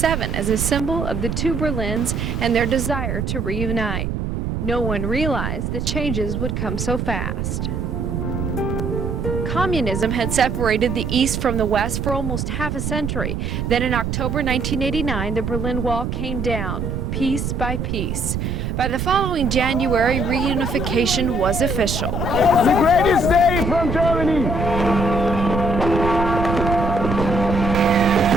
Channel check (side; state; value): right; noise; rumble, 2 dB below the sound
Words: as a symbol of the two Berlins and their desire to reunite. No one realized the changes would come so fast. Communism had separated the East from the West for almost half a century. Then in October 1989, the Berlin Wall came down, piece by piece. By the following January, reunification was official. The greatest day from Germany!